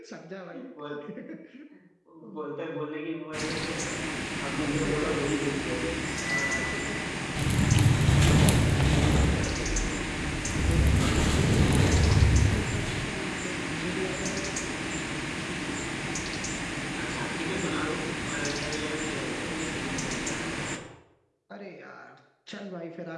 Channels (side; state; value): both; identical; correlation 1.00